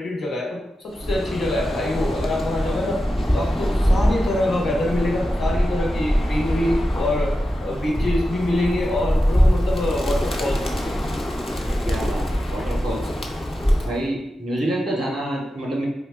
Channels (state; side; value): normal; both; correlation 0.91